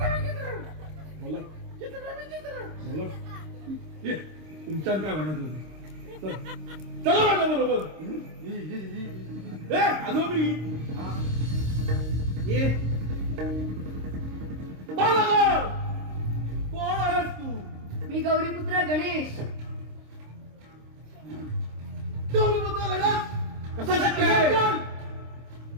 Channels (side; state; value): left; late; 26 ms